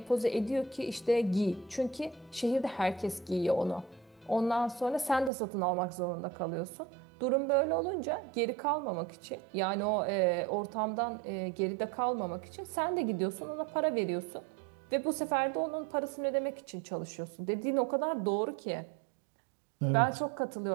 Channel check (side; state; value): left; drops out; at 5.3 s